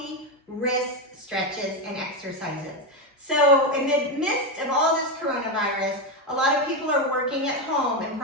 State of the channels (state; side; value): normal; both; correlation 0.10